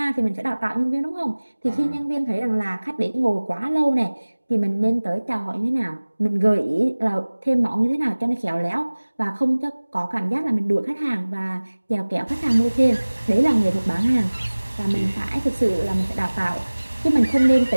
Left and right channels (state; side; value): inverted; both; correlation -1.00